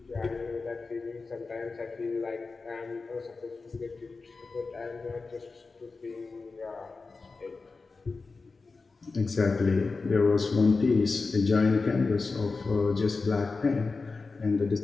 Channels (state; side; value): quieter; right; 4.1 dB